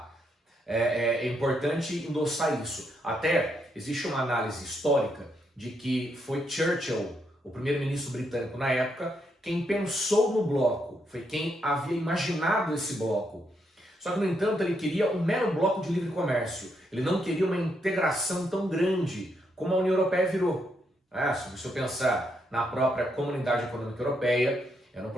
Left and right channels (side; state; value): both; normal; correlation 0.78